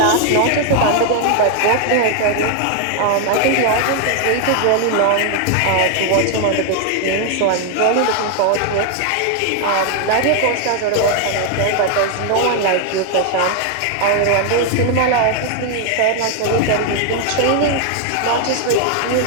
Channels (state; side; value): different; both; correlation 0.00